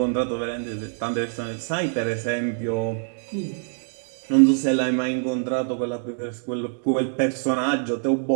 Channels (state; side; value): silent; left; digital silence